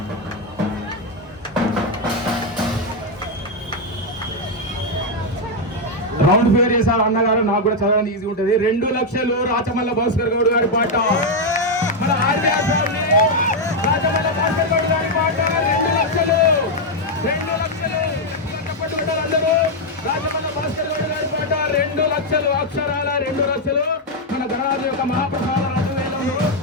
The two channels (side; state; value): both; normal; correlation 0.01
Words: రౌండ్ ఫిగర్ చేశారు అన్నగారు, నాకు కూడా చదవడానికి ఈజీ ఉంటుంది. 2 లక్షలు రాచమల్ల భాస్కర్ గౌడ్ గారి పాట. మన ఆర్బీఆర్ ఫ్యామిలీ రాచమల్ల భాస్కర్ గౌడ్ గారి పాట 2 లక్షలు. 2 లక్షలు చెప్పట్టుకుంటారు అందరూ. రాచమల్ల భాస్కర్ గౌడ్ గారి పాట 2 లక్షలు, అక్షరాల 2 లక్షలు. మన గణరాజు యొక్క మహాప్రసాద 2,000.